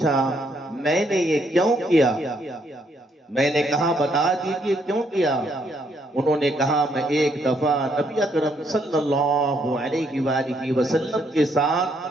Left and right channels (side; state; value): both; normal; correlation 0.72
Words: میں نے یہ کیوں کیا؟ میں نے کہا بتا دیجئے کیوں کیا؟ انہوں نے کہا میں ایک دفعہ نبی اکرم صلی اللہ علیہ وآلہ وسلم کے